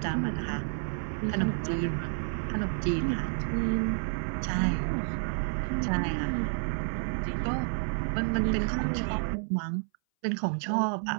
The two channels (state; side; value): silent; left; 58 dB below the other